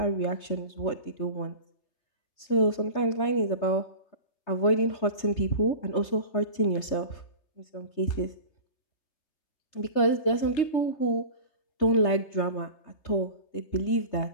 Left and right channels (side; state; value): right; late; 3.3 ms